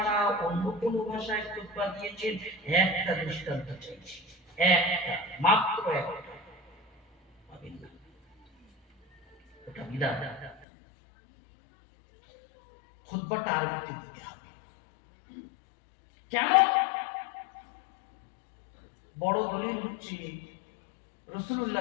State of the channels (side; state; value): right; drops out; at 10.7 s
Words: অন্য কোনো ভাষায় খুতবা দিয়েছেন? একটা দৃষ্টান্ত চাইছি, একটা, মাত্র একটা। ওটা বিদাত। খুতবাটা আরবিতে দিতে হবে। কেন? বড় দলিল হচ্ছে